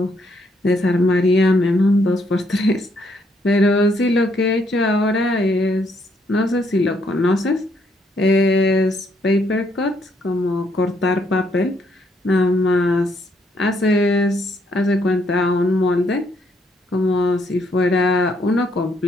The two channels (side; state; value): both; normal; correlation 0.72